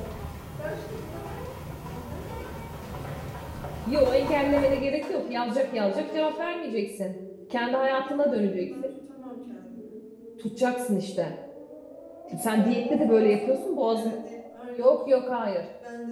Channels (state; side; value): identical; both; correlation 1.00